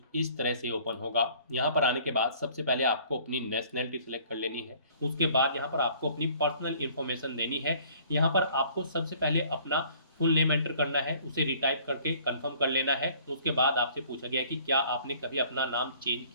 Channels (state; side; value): inverted; both; correlation -0.55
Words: इस तरह से ओपन होगा। यहाँ पर आने के बाद सबसे पहले आपको अपनी नेशनैलिटी सिलेक्ट कर लेनी है। उसके बाद यहाँ पर आपको अपनी पर्सनल इन्फॉर्मेशन देनी है। यहाँ पर आपको सबसे पहले अपना फुल नेम एंटर करना है, उसे रिटाइप करके कंफर्म कर लेना है। उसके बाद आपसे पूछा गया है कि क्या आपने कभी अपना नाम चेंज